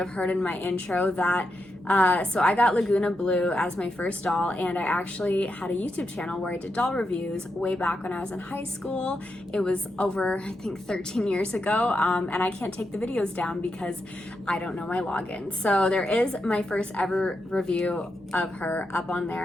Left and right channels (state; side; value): normal; both; correlation 0.85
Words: heard in my intro that so I got Laguna Blue as my first doll, and I actually had a YouTube channel where I did doll reviews way back when I was in high school. It was over, I think, 13 years ago, and I can't take the videos down because I don't know my login. So there is my first ever review of her up on there,